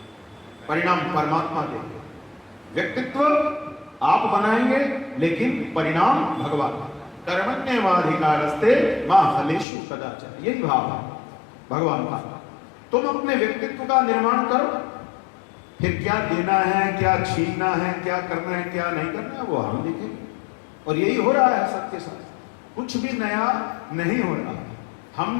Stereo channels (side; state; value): right; drops out; at 9.7 s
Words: परिणाम परमात्मा देगी। व्यक्तित्व आप बनाएंगे लेकिन परिणाम भगवान। कर्मण्येवाधिकारस्ते मा फलेषु कदाचन, यही भाव है भगवान का। तुम अपने व्यक्तित्व का निर्माण करो, फिर क्या देना है, क्या छीनना है, क्या करना है, क्या नहीं करना है, वो हम देखेंगे। और यही हो रहा है सबके साथ, कुछ भी नया नहीं हो रहा।